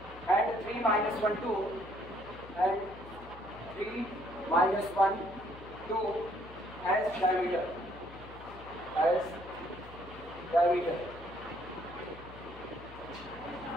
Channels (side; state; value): left; noise; hum, 17 dB below the sound